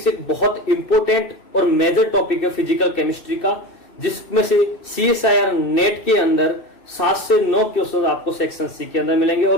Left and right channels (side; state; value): right; late; 2.6 ms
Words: एक बहुत इंपॉर्टेंट और मेजर टॉपिक है फिजिकल केमिस्ट्री का, जिसमें से CSIR नेट के अंदर 7 से 9 क्वेश्चन आपको सेक्शन सी के अंदर मिलेंगे